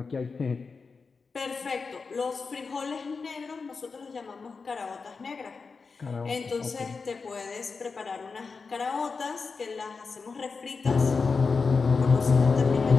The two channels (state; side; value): quieter; right; 4.7 dB